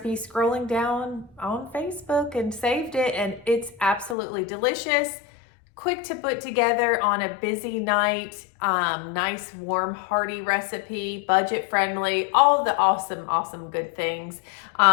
scrolling down on Facebook and saved it, and it's absolutely delicious. Quick to put together on a busy night. Nice, warm, hearty recipe, budget friendly, all the awesome good things.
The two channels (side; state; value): right; drops out; at 4.2 s